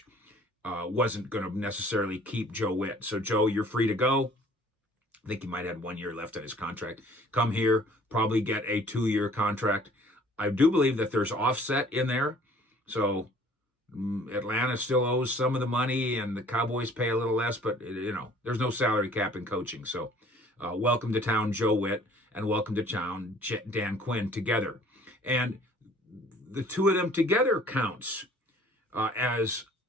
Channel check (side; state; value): both; normal; correlation 0.54